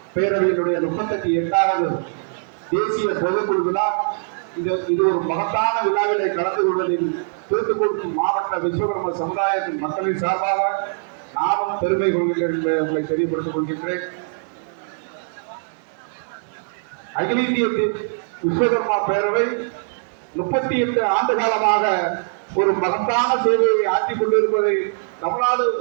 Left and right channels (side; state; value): left; silent; digital silence